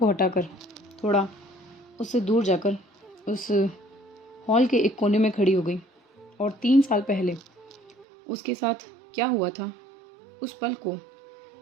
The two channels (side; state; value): left; drops out; at 8.1 s